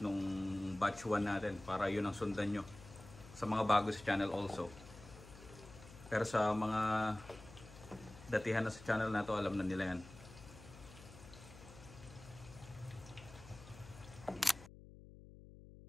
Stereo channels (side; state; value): left; noise; hum, 17 dB below the sound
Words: nung batch 1 natin para yun ang sundan nyo. Sa mga bago sa channel also. Pero sa mga datihan na sa channel na to, alam na nila yan.